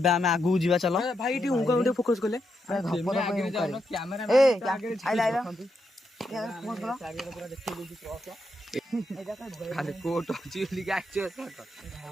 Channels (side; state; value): both; normal; correlation 0.82